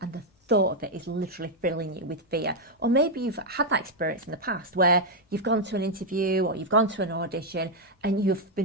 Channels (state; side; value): normal; both; correlation 0.01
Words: and the thought of it is literally filling you with fear? Or maybe you've had that experience in the past where you've gone to an interview or you've gone to an audition and you've